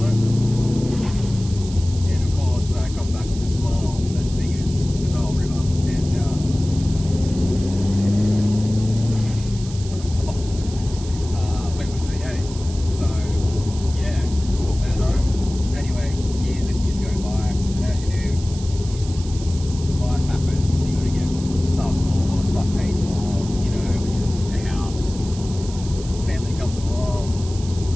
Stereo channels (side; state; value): right; noise; hiss, 16 dB below the sound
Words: it. And of course, I come back with a smile as big as the Nile River. And went with the V8. So, yeah, took that home. Anyway, years and years go by. And as you do, life happens. You got to get stuff bought, stuff paid for, you know, which is a house. Family comes along,